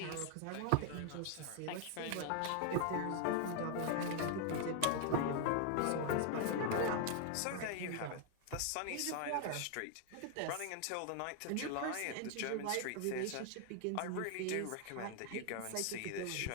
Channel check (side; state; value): both; different; correlation 0.00